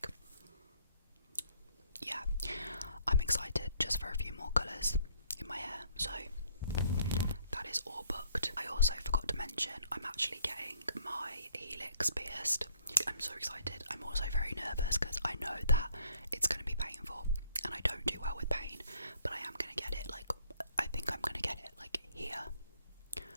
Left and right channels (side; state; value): both; inverted; correlation -0.65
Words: yeah, I'm excited just for a few more colours in my hair, so that is all booked. I also forgot to mention I'm actually getting my helix pierced. I'm so excited. I'm also very nervous because I know that it's going to be painful, and I don't do well with pain, but I am going to get it, like, I think I'm going to get it, like, here.